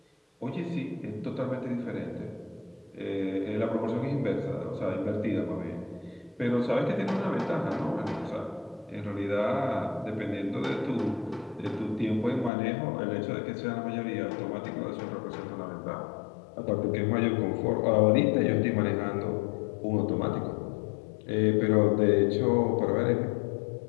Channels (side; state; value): right; drops out; at 12.5 s